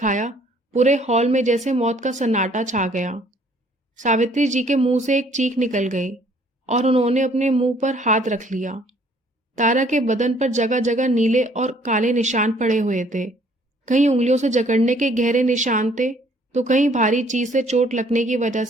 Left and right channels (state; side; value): normal; both; correlation 0.60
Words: पूरे हॉल में जैसे मौत का सन्नाटा छा गया। सावित्री जी के मुंह से एक चीख निकल गई और उन्होंने अपने मुंह पर हाथ रख लिया। तारा के बदन पर जगह जगह नीले और काले निशान पड़े हुए थे। कहीं उंगलियों से जकड़ने के गहरे निशान थे, तो कहीं भारी चीज से चोट लगने की वजह